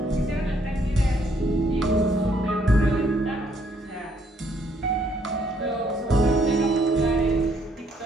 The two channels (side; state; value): both; normal; correlation 0.69